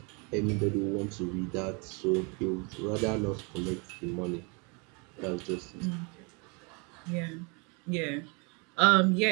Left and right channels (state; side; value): quieter; left; 32.0 dB